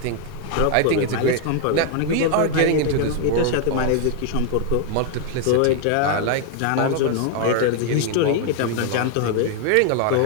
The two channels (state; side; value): different; both; correlation 0.00